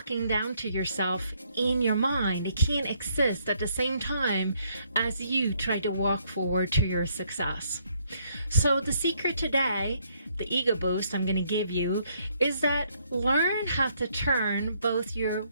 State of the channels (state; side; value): inverted; both; correlation -0.69